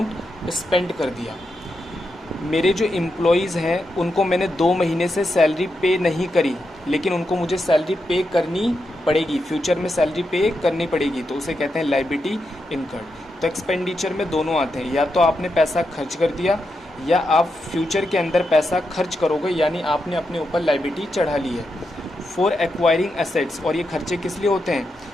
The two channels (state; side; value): normal; both; correlation 0.85